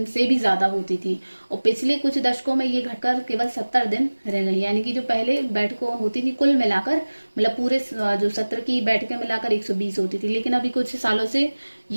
से भी ज्यादा होती थी, और पिछले कुछ दशकों में ये घटकर केवल 70 दिन रह गई। यानी कि जो पहले बैठकों होती थी कुल मिलाकर, मतलब पूरे जो सत्र की बैठकें मिलाकर 120 होती थी, लेकिन अभी कुछ सालों से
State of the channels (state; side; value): inverted; both; correlation -1.00